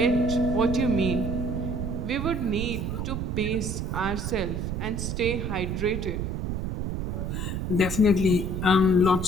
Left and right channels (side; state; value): right; noise; rumble, 2 dB below the sound